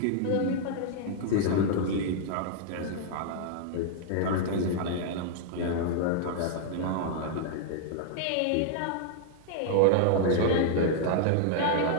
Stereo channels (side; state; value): both; different; correlation -0.01